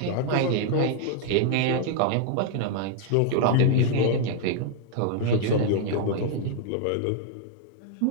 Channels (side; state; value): both; different; correlation 0.00